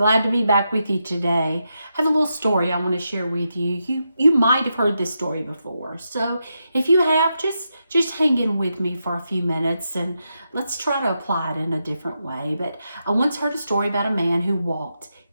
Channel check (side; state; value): both; inverted; correlation -0.85